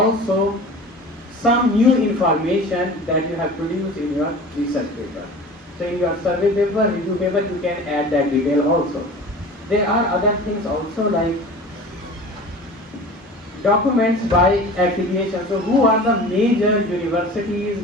some new information that you have produced in your research paper. So in your survey paper, review paper, you can add that detail also. There are other things also like documents by affiliation. So who are the major universities,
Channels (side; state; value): both; normal; correlation 0.39